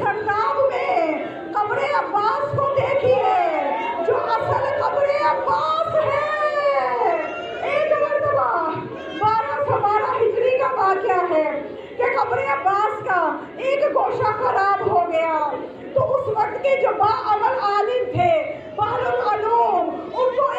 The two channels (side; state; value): both; identical; correlation 1.00